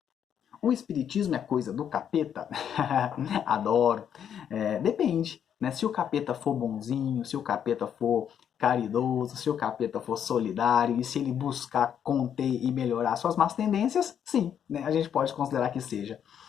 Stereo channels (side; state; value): right; quieter; 8.8 dB